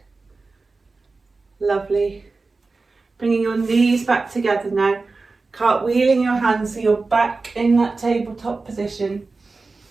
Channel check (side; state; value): left; quieter; 3.8 dB